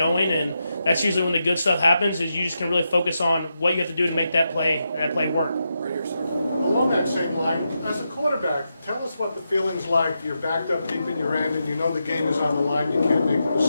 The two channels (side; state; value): both; inverted; correlation -0.86